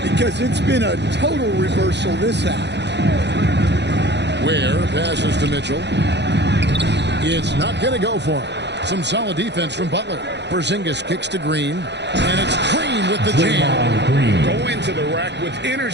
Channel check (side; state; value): left; late; 0.50 ms